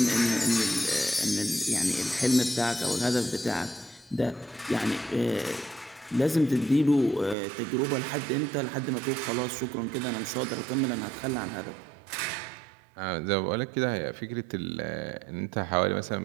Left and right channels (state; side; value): drops out; left; at 7.4 s